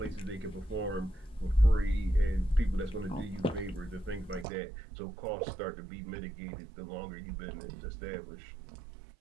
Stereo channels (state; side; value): drops out; left; at 4.5 s